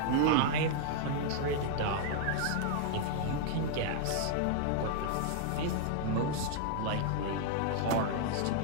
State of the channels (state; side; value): different; both; correlation -0.01